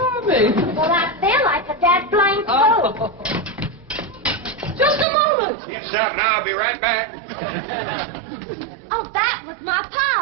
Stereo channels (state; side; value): drops out; left; at 5.1 s